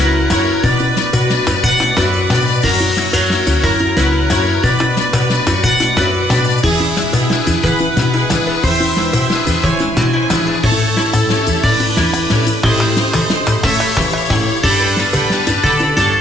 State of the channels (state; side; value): normal; both; correlation 0.73